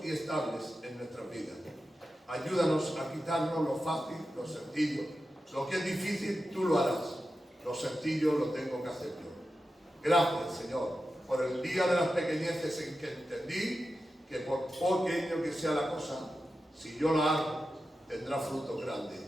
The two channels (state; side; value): normal; both; correlation 0.91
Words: y estables en nuestras vidas. Ayúdanos a quitarnos lo fácil, lo sencillo. Lo que es difícil, tú lo harás. Lo sencillo lo tengo que hacer yo. Gracias, Señor, por el día de las pequeñeces en que entendí que por pequeño que sea la cosa, si yo la hago, tendrá fruto grande